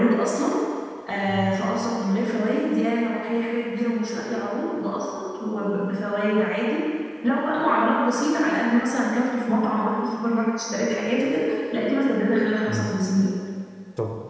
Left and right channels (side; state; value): both; identical; correlation 1.00